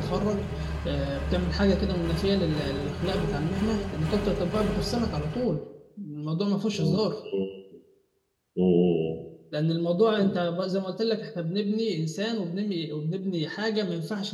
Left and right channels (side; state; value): both; identical; correlation 1.00